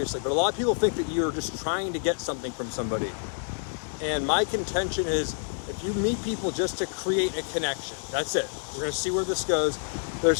but a lot of people think that you're just trying to get something from somebody. And my contention is, if you meet people just to create a connection, that's it. We're gonna see where this goes. There's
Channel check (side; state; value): right; silent; 59 dB below the other